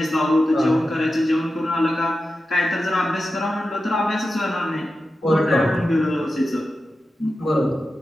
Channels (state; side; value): normal; both; correlation 0.92